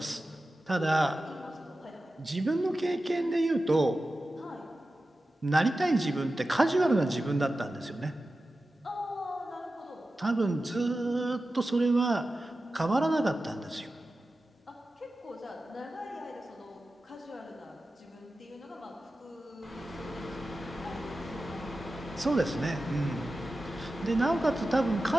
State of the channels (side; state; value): both; normal; correlation 0.94